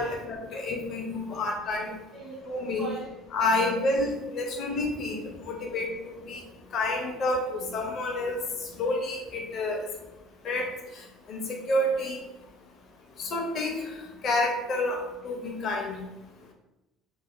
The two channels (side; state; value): both; normal; correlation 0.48